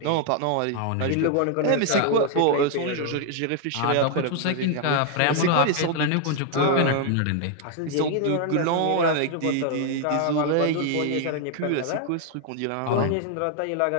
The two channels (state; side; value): different; both; correlation 0.00